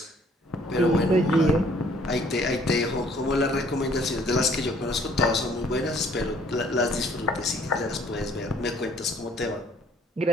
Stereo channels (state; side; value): normal; both; correlation 0.60